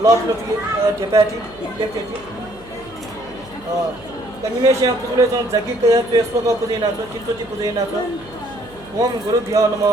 लट लटी ढेपाटी लेप्टेटी कनिमेश्या पुजुले जन जगी कया त्वेस्वक पुजेना छ चित्तोजी पुजेना छ ओम गुरुभ्यो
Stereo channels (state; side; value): noise; right; hum, 23 dB below the sound